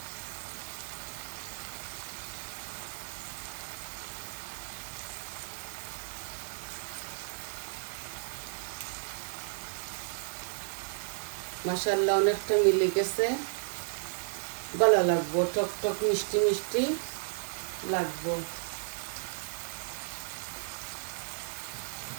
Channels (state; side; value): silent; left; 55 dB below the other